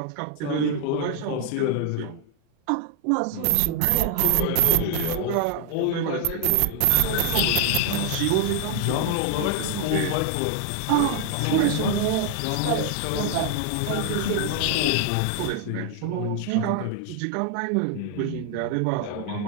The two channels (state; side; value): different; both; correlation 0.00